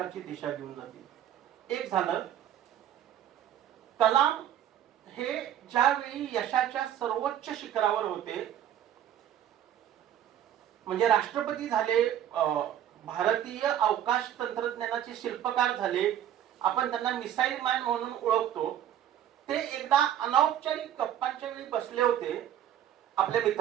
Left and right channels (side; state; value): left; quieter; 10.8 dB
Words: दिशा देऊन जातील. एक झालं, कलाम हे ज्यावेळी यशाच्या सर्वोच्च शिखरावर होते, म्हणजे राष्ट्रपती झाले, भारतीय अवकाश तंत्रज्ञानाचे शिल्पकार झाले, आपण त्यांना मिसाईल मॅन म्हणून ओळखतो. ते एकदा अनौपचारिक गप्पांच्या वेळी बसले होते आपल्या